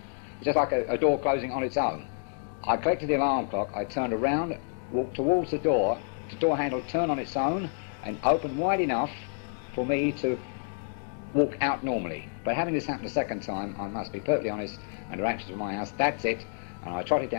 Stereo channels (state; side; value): silent; right; digital silence